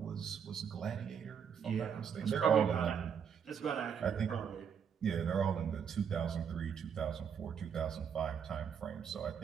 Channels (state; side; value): quieter; left; 7.5 dB